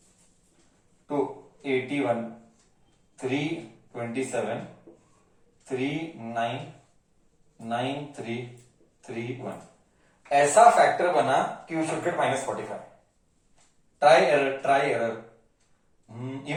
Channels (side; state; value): both; identical; correlation 1.00